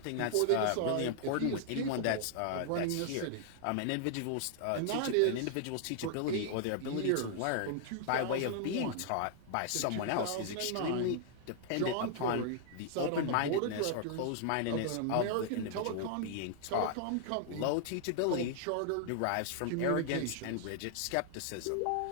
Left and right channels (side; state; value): both; different; correlation 0.00